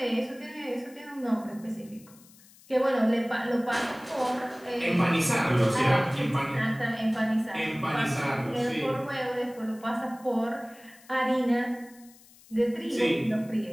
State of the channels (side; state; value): left; noise; hiss, 25 dB below the sound